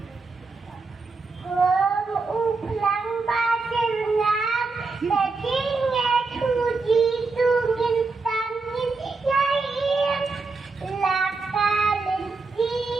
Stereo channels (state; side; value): quieter; left; 4.0 dB